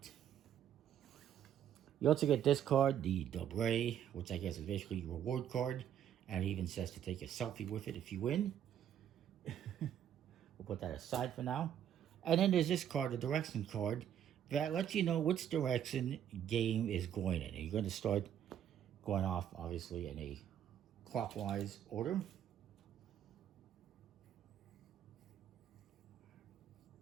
You also get this card, the Dobro, which I guess is basically your reward card. And it even says to take a selfie with it if you win. We'll put that aside for now. And then there's this card, the direction card, that lets you know which direction game is going in. And you're going to start going off, obviously, in a clockwise order.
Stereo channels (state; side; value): quieter; left; 9.9 dB